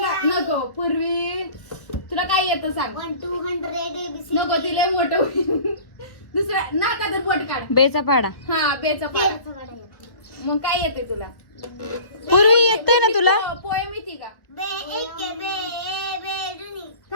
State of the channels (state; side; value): late; right; 1.2 ms